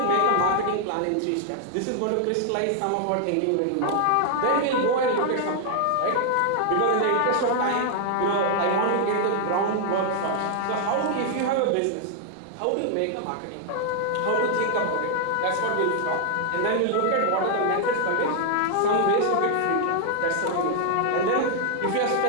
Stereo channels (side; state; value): both; different; correlation 0.00